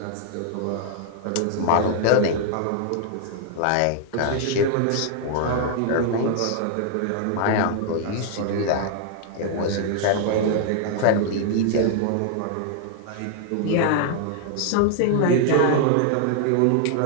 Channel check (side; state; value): both; different; correlation 0.00